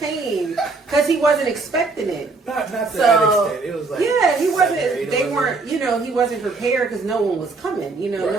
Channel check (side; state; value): left; quieter; 3.9 dB